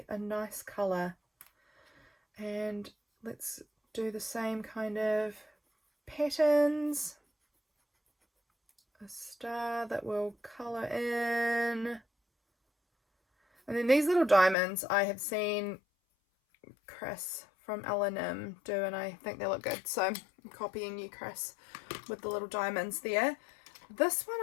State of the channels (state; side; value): drops out; right; at 14.6 s